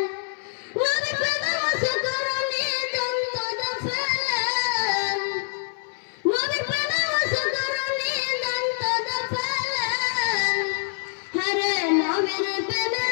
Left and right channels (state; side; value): silent; right; 59 dB below the other